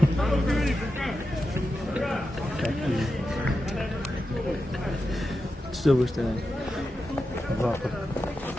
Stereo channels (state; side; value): normal; both; correlation 0.89